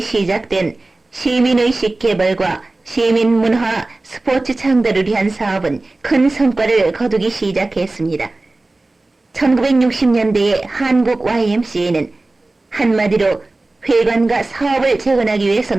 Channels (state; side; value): quieter; left; 3.1 dB